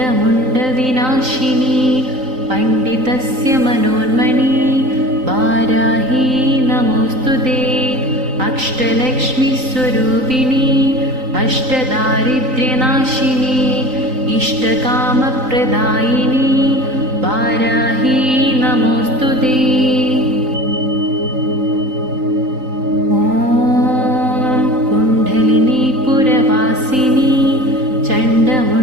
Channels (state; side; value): late; left; 3.9 ms